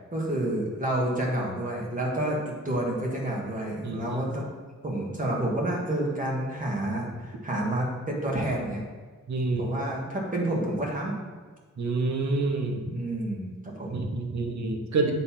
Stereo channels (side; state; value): both; normal; correlation 0.48